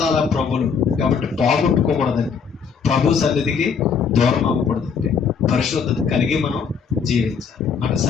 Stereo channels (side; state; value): right; quieter; 6.2 dB